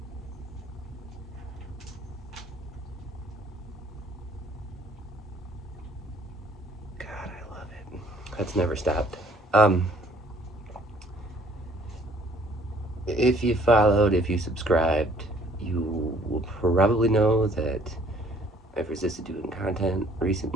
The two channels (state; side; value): normal; both; correlation 0.59